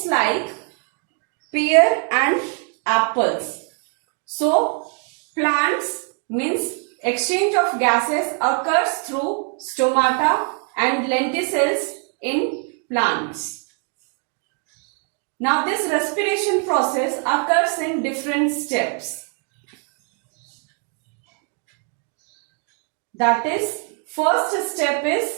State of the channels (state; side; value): quieter; left; 39.7 dB